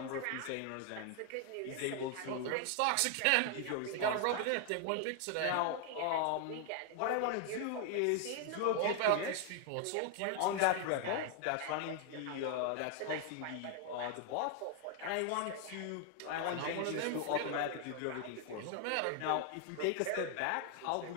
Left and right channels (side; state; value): both; different; correlation 0.00